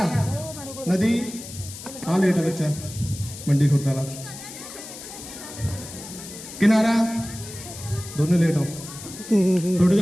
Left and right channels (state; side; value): noise; left; hiss, 13 dB below the sound